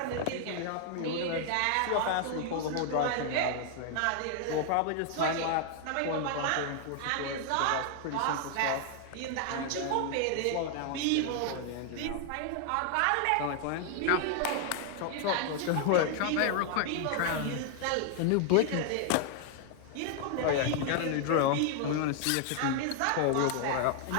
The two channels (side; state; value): both; different; correlation 0.00